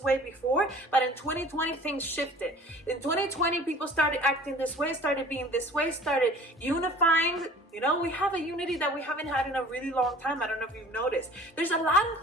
way before, but in 2020 things shifted. In 2020 people started acting this way, started being this way, started unifying. You know, we have a unity that we haven't had in a really long time. I don't know if you've noticed. There's a lot of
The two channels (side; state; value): both; normal; correlation 0.47